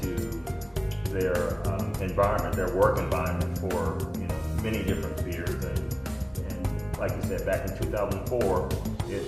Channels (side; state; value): both; identical; correlation 1.00